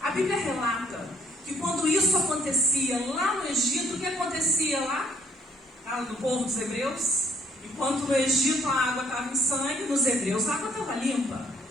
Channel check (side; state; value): both; normal; correlation 0.65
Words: Bíblia relata que quando isso acontecia lá no Egito, o que acontecia lá no povo dos hebreus? Enquanto no Egito a água estava em sangue, nos hebreus a água estava limpa.